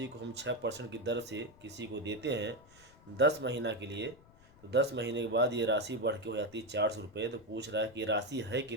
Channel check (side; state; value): left; noise; rumble, 25 dB below the sound